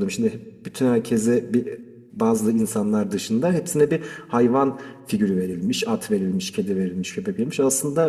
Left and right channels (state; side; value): identical; both; correlation 1.00